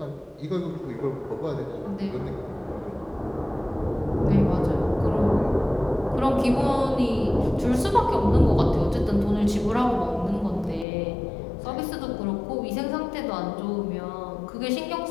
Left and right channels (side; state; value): right; drops out; at 10.9 s